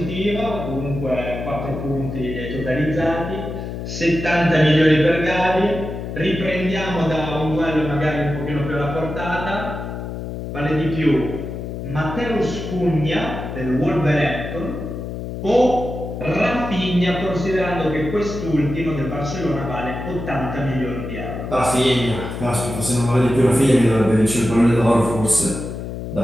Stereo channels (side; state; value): left; noise; hum, 7 dB below the sound